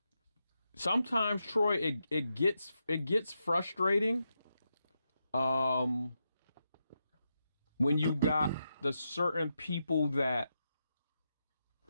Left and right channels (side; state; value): both; inverted; correlation -0.86